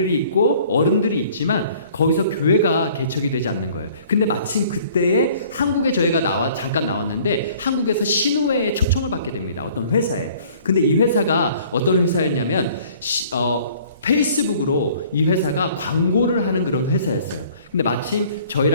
있고 어른들이 있지만 거기서 교회가 개척이 되지 않는 거예요. 근데 마침 그때에 한국에 저희가 잠깐 나왔는데 한국에서 신우회에 초청을 받게 됩니다. 어떤 회사에. 근데 이 회사가 어떤 회사였냐면 페이스북으로 이 회사가 광고를 하는 그런 회사였어요. 근데 마침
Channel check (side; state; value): both; inverted; correlation -0.54